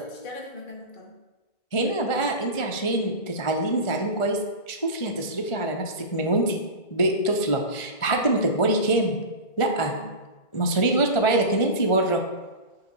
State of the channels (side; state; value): right; late; 1.4 ms